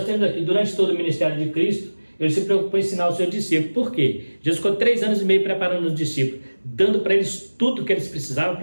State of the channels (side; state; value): both; inverted; correlation -1.00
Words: temos aqui, durante todo o ministério de Cristo, ele se preocupou em ensinar os seus discípulos. Por quê? Jesus ficou 3 anos e meio preparando os discípulos, dando para eles tudo que eles precisavam